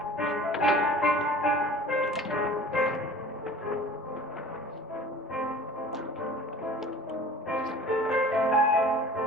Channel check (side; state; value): both; normal; correlation 0.43